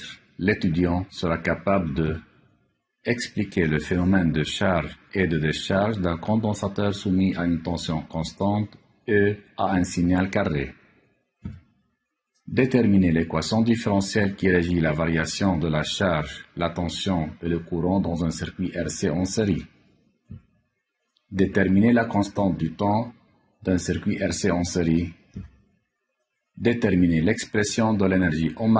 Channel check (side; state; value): both; identical; correlation 1.00